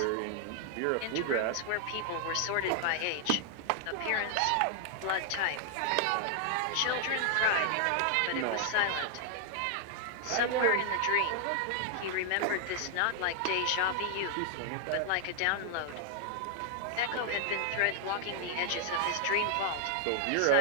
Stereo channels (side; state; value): both; different; correlation 0.00